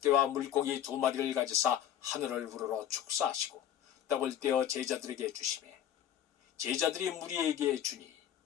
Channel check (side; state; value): right; quieter; 10.4 dB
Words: 물고기 2마리를 가지사 하늘을 우러러 축사하시고 떡을 떼어 제자들에게 주시매 제자들이 무리에게 주니